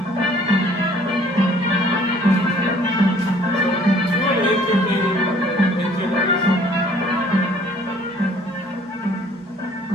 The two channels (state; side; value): normal; both; correlation 0.57